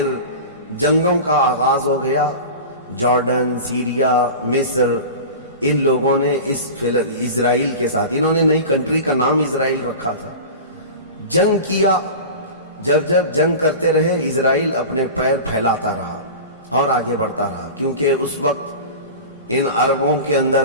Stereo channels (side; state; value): both; inverted; correlation -0.32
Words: جنگوں کا آغاز ہو گیا۔ جارڈن، سیریا، مصر، ان لوگوں نے اس اسرائیل کے ساتھ، انہوں نے نئی کنٹری کا نام اسرائیل رکھا تھا، جنگ کیا۔ جب جنگ کرتے رہے، اسرائیل اپنے پیر پھیلاتا رہا اور آگے بڑھتا رہا، کیونکہ اس وقت ان عربوں کے